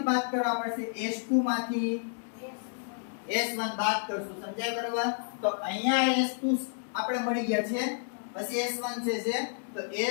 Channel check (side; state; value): right; silent; digital silence